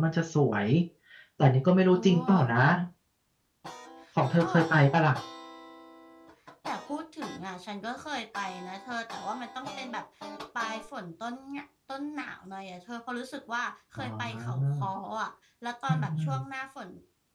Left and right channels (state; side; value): identical; both; correlation 1.00